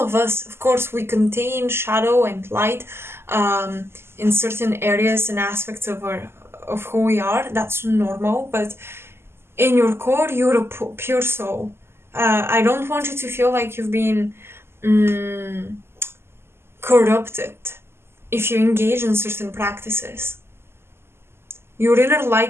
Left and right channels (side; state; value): left; late; 0.12 ms